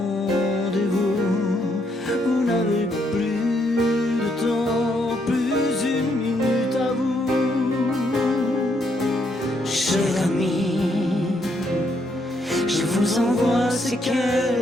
Vous n'avez plus de temps, plus une minute à vous. Cher ami, je vous envoie ces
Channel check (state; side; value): normal; both; correlation 0.74